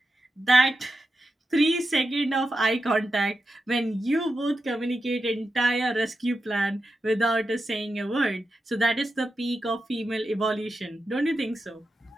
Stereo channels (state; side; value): normal; both; correlation 0.90